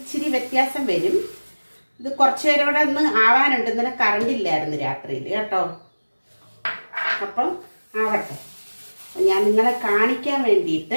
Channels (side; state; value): both; inverted; correlation -1.00